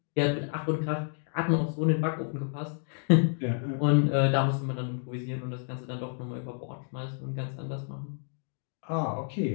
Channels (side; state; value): right; silent; digital silence